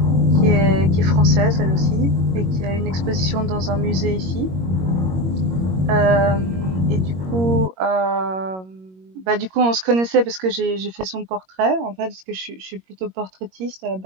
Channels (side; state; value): left; late; 21 ms